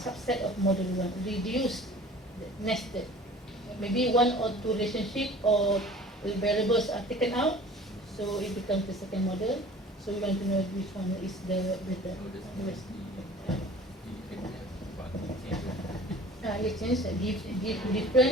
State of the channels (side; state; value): both; normal; correlation 0.46